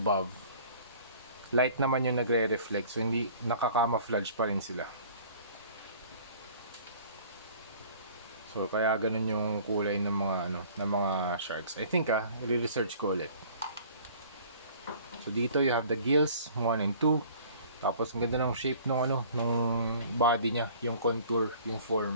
light naman yung nagre-reflect, so hindi nakaka-camouflage pa rin sila. So kaya ganun yung kulay ng mga sharks. I think i-research ko ulit. So dito you have the gills 1 and 2. Tapos ang ganda ng shape nung body niya, yung contour, yung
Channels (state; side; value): inverted; both; correlation -0.50